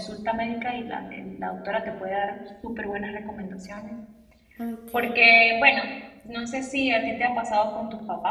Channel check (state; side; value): identical; both; correlation 1.00